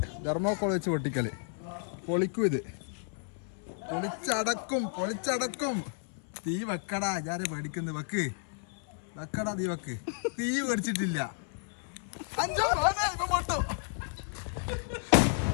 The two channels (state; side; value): silent; right; 56 dB below the other